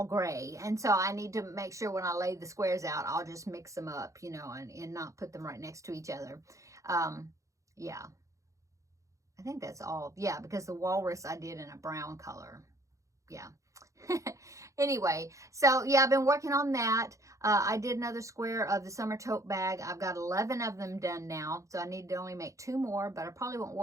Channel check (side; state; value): left; late; 0.15 ms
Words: gray. And so I need to make sure when I lay the squares out, I'll just mix them up, you know, and not put them right next to each other. Yeah. I think that's all. Yeah, because the walrus I did in a brown color. Yeah. Anyway, so yeah, I've been working on that. I did another square of the summer tote bag. I've got 11 of them done now, so I need to only make 2 more, but I probably won't